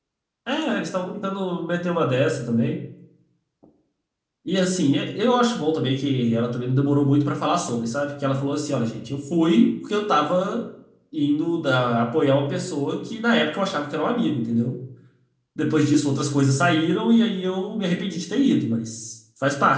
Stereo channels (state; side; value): identical; both; correlation 1.00